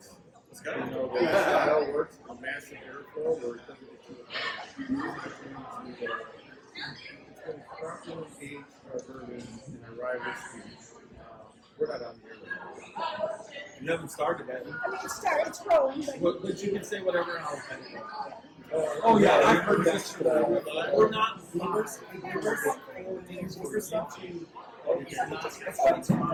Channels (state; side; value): identical; both; correlation 1.00